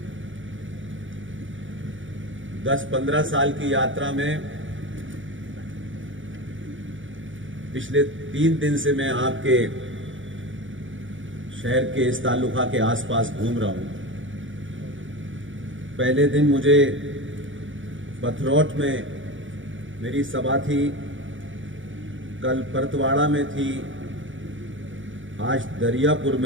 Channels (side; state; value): left; late; 0.56 ms